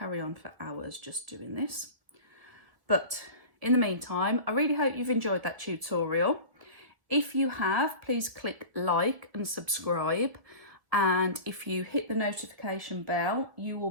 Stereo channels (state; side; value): late; left; 1.8 ms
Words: on for hours just doing this. But in the meantime, I really hope you've enjoyed that tutorial. If you have, please click like and subscribe. And if you hit the notification bell, you